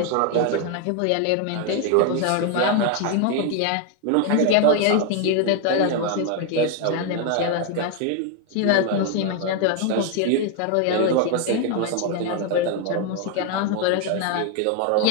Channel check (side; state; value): both; different; correlation 0.01